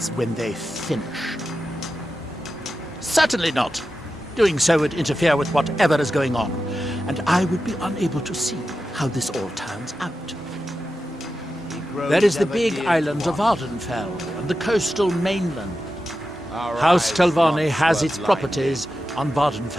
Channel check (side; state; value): both; normal; correlation 0.91